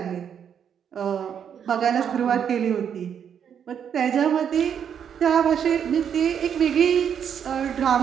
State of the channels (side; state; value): left; quieter; 8.2 dB